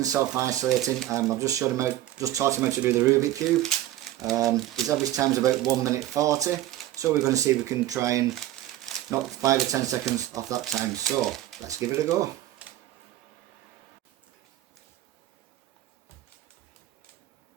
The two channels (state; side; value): quieter; left; 14.2 dB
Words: self-isolating. I've just showed him how, just taught him how to do the Rubik Cube. His average time is about 1 minute 40, so we're going to see if we can try and knock 5 or 10 seconds off that time. So let's give it a go.